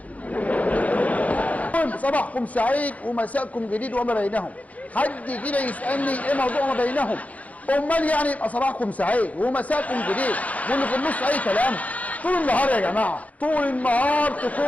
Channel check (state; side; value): late; right; 0.070 ms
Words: صباحكم سعيد ومساءكم جديد وما بينهم. حد كده يسألني ايه موضوع ما بينهم؟ امال يعني يبقى صباحكم سعيد ومساءكم جديد واللي في النص اي كلام؟ طول النهار يا جماعه، طول النهار